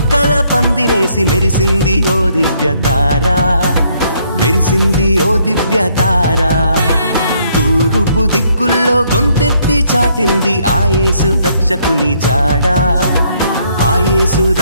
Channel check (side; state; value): both; inverted; correlation -0.69